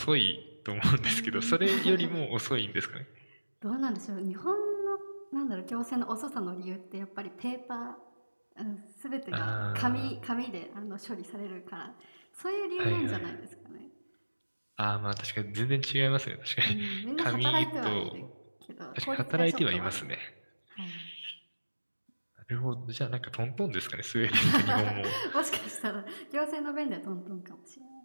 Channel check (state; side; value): inverted; both; correlation -1.00